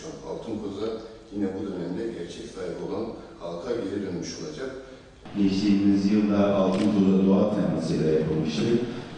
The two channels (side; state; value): both; identical; correlation 1.00